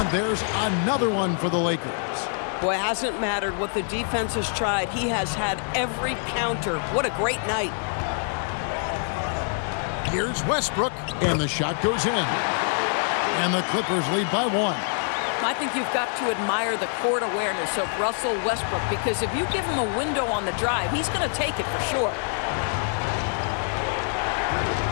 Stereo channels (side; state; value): right; silent; 58 dB below the other